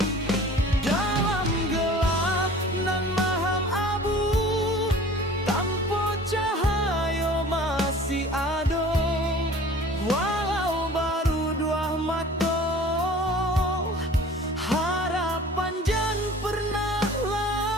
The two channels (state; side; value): normal; both; correlation 0.45